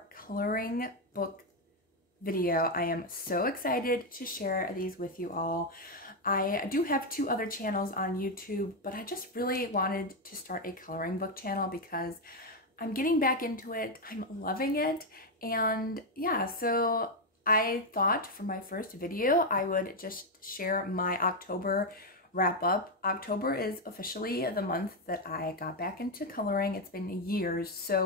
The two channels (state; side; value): normal; both; correlation 0.04